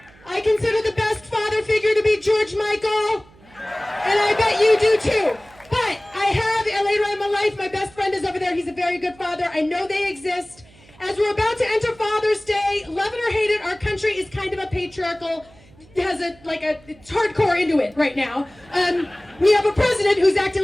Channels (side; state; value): right; noise; hum, 26 dB below the sound